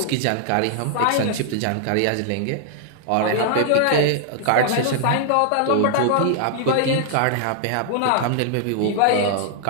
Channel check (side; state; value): both; different; correlation -0.01